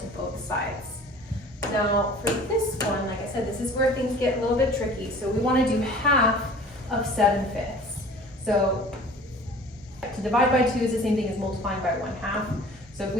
both sides. Now, for this one, like I said, this is where things get a little bit tricky. So we want to do half of 7/5. So to divide by 2 is the same thing as multiplying by 1/2. So if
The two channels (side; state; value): both; normal; correlation 0.46